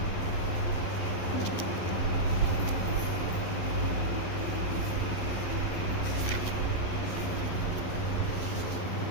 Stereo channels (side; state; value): right; late; 11 ms